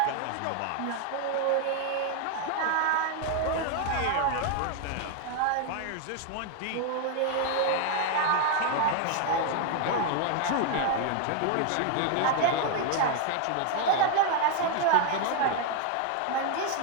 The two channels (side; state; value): both; different; correlation 0.00